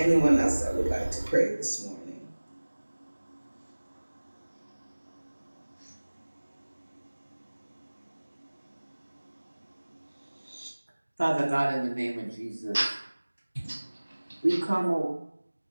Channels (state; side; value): inverted; both; correlation -1.00